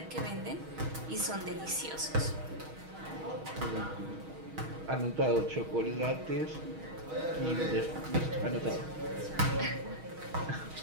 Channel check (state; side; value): late; left; 6.3 ms